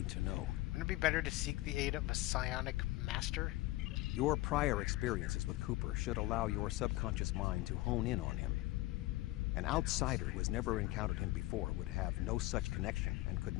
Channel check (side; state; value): right; quieter; 18.4 dB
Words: to know? Wouldn't it be better to seek the aid of a psionic master? Your prior experiences with Cooper should allow your subconscious mind to hone in on him. An outsider who has never encountered him before would have no such connection and could